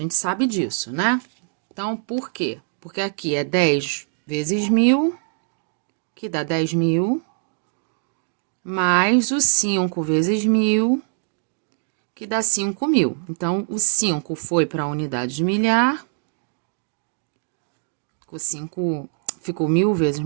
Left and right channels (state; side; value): silent; left; digital silence